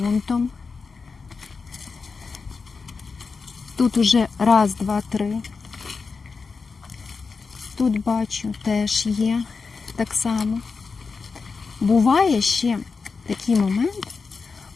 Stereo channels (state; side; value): quieter; right; 4.8 dB